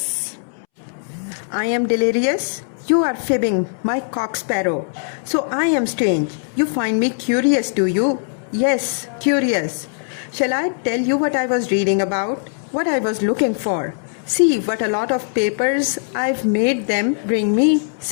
I am delirious? You are fibbing, my cock sparrow. So I am strange. You find me curious, do you? Yes, curious. Shall I tell you what I was reading about? What I was looking for? See what a lot of papers I've made them bring me.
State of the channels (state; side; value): silent; right; 66 dB below the other